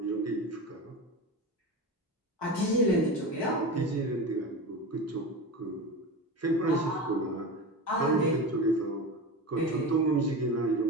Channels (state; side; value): normal; both; correlation 0.26